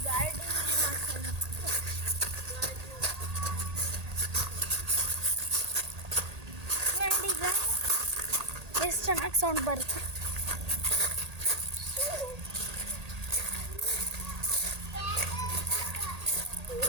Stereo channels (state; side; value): late; left; 1.8 ms